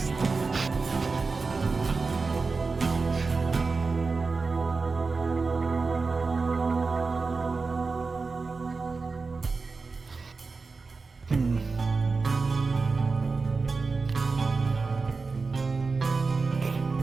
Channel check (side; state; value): left; quieter; 4.2 dB